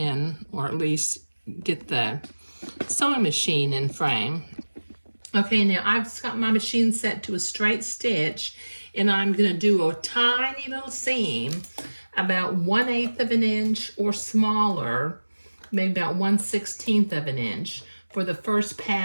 or at least get the sewing machine in frame. Okay, now I've got my machine set to a straight stitch, and I'm going to do a tiny little seam about 1/8 of an inch or smaller, maybe about 1/16 of an inch for the first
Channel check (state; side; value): inverted; both; correlation -1.00